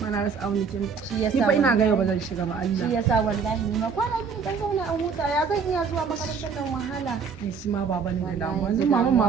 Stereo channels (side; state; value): left; quieter; 5.8 dB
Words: ma na rasa abin da ke shi yasa ni fa ina ga yau ba zan shiga ba Allah. Shi yasa wallahi ni ma kwana biyu dan zauna an huta ya zan iya zuwa makarantar nan wahala. Ai shi ma baba ne da damuwa. Yanzu